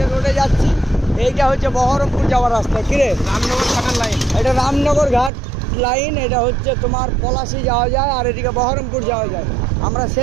রোডে যাচ্ছি, এইটা হচ্ছে বহরমপুর যাওয়ার রাস্তা। কিরে, রামনগর ঘাটের লাইন। এটা রামনগর ঘাট লাইন, এটা হচ্ছে তোমার পলাশি যাওয়া যায় আর এদিকে বহরমপুর যাওয়া যায়। আমরা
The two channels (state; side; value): drops out; left; at 5.3 s